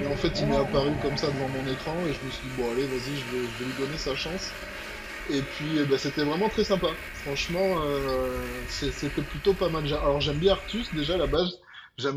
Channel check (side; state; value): both; identical; correlation 1.00